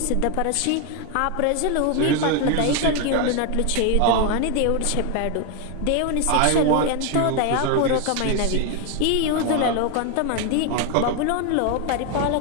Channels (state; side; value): different; both; correlation 0.01